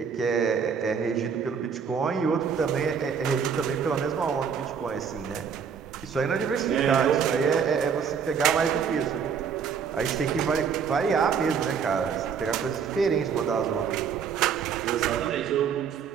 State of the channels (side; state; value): left; quieter; 6.8 dB